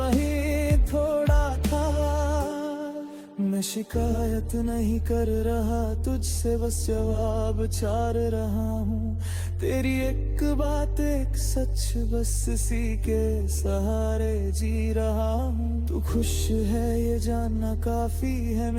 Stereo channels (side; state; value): both; identical; correlation 1.00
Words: थोड़ा था। मैं शिकायत नहीं कर रहा तुझसे, बस जवाब चार रहा हूँ। तेरी एक बात एक सच, बस इसी के सहारे जी रहा हूँ। तू खुश है ये जानना काफी है